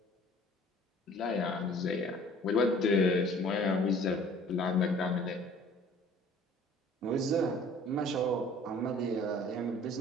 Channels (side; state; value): both; normal; correlation 0.51